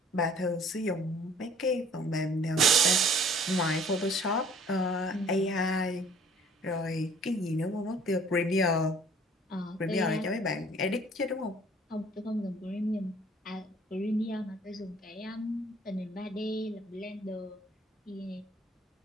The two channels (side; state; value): both; normal; correlation 0.54